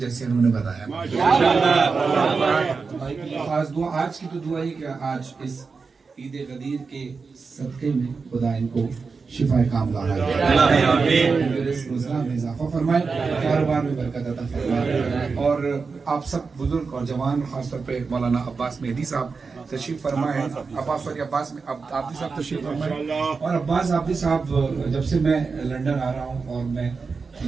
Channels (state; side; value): quieter; left; 4.8 dB